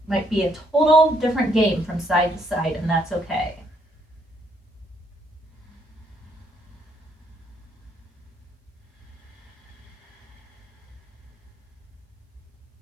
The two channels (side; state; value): both; normal; correlation 0.70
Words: might be a total different game from side to side, and that's okay.